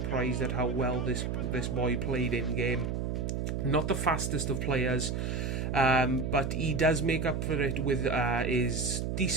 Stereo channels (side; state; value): right; noise; hum, 1 dB below the sound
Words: at how well this boy played in game. Not the fastest of players, but he does make up for it with his